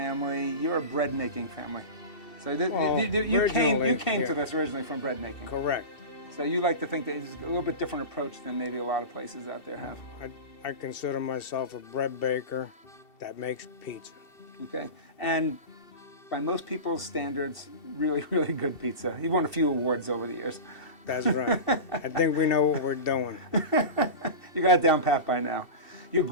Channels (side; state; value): right; late; 2.7 ms